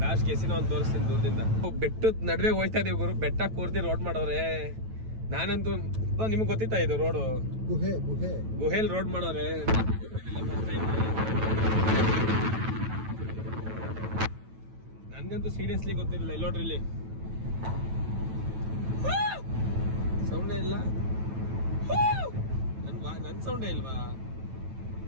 ಲಾಸ್ಟ್ ಕೆಸಿನ ಒಂದು ತೋರಿಸ್ತೀನಿ ದೂರದಿಂದ. ಬೆಟ್ಟದ ನಡುವೆ ಹೋಯ್ತಾ ಇದೀವಿ ಗುರು. ಬೆಟ್ಟ ಕೂರ್ತಿ ರೋಡ್ ಮಾಡೋರೆ. ನಾನಂತೂ ನಿಮ್ಗೆ ಗೊತ್ತಿತ್ತಾ ಇದು ರೋಡು? ಗುಹೆ ಗುಹೆಲ್ ರೋಡ್ ಮಾಡೋರೆ. ನನ್ಗಂತೂ ಸೀರಿಯಸ್ಲಿ ಗೊತ್ತಿರಲಿಲ್ಲ. ಇಲ್ಲಿ ನೋಡ್ರಿ, ಇಲ್ಲಿ ಸೌಂಡೇ ಇಲ್ಲ. ನನ್ ಸೌಂಡೇ ಇಲ್ವಾ?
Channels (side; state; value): left; late; 9.1 ms